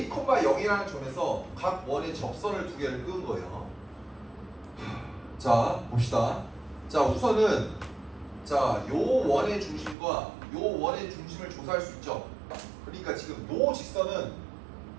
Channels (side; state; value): left; drops out; at 10.0 s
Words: 0이라는 점에서 각 원의 접선을 두 개를 끄은 거예요. 자, 봅시다. 자, 우선은 자, 요 원의 중심과 요 원의 중심을 조사할 수 있죠. 그러니까 지금 요 직선은